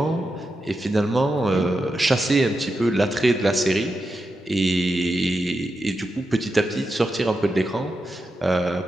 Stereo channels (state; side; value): normal; both; correlation 0.88